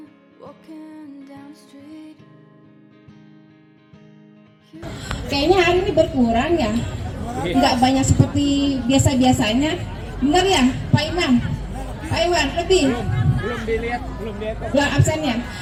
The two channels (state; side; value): identical; both; correlation 1.00